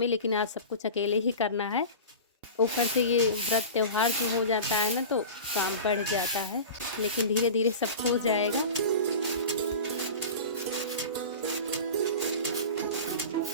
लेकिन आज सब कुछ अकेले ही करना है। ऊपर से ये व्रत त्यौहार जो हो जाता है ना, तो काम बढ़ जाता है, लेकिन धीरे धीरे सब हो जाएगा।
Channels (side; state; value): both; inverted; correlation -0.33